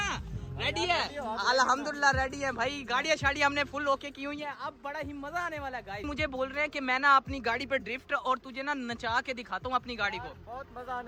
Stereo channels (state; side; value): identical; both; correlation 1.00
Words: रेडी है अल्हम्दुलिल्लाह रेडी है भाई। गाड़ियाँ शाड़ियाँ हमने फुल ओके की हुई है, अब बड़ा ही मजा आने वाला है। गाइस मुझे बोल रहे हैं कि मैं ना अपनी गाड़ी पे ड्रिफ्ट और तुझे ना नचा के दिखाता हूँ अपनी गाड़ी को। बहुत मजा